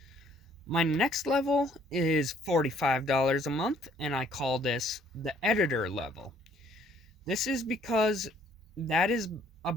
My next level is $45 a month, and I call this the editor level. This is because that is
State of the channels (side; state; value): both; normal; correlation 0.62